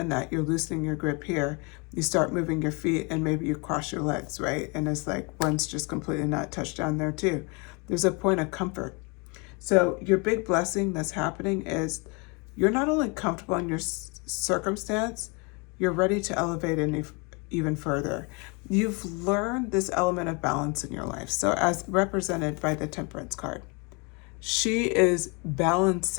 that, you're loosening your grip here. You start moving your feet, and maybe you cross your legs, right? And it's like one's just completely not touched down there too. There's a point of comfort. So your big blessing that's happening is you're not only comfortable in your circumstance, you're ready to elevate even further. You've learned this element of balance in your life. So as represented by the Temperance card, she is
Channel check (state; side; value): quieter; right; 30.9 dB